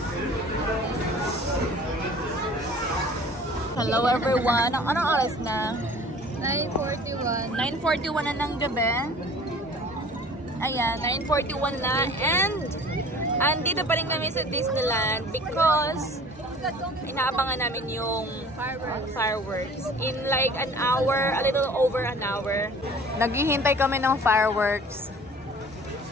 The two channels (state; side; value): normal; both; correlation 0.46